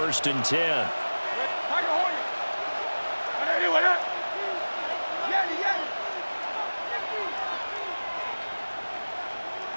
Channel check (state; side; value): inverted; both; correlation -1.00